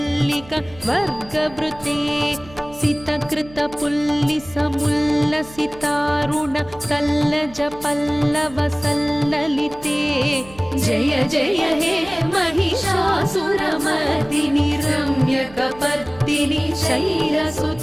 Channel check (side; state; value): right; noise; hum, 21 dB below the sound